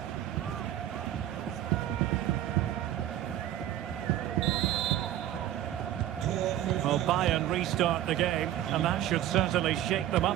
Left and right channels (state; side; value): quieter; left; 12.5 dB